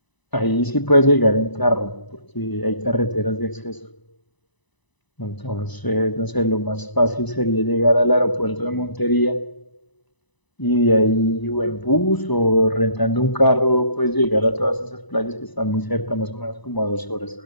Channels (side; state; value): right; late; 1.0 ms